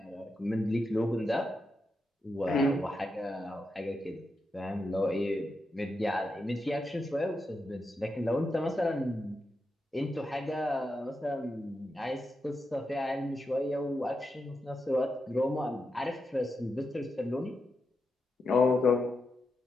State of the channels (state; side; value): normal; both; correlation 0.87